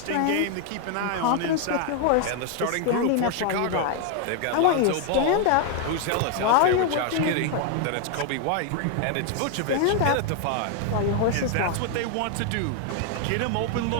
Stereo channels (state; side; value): different; both; correlation 0.00